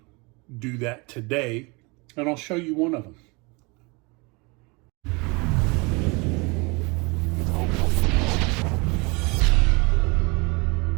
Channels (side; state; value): left; quieter; 28.3 dB